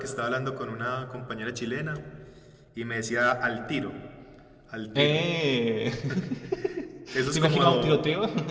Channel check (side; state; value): both; identical; correlation 1.00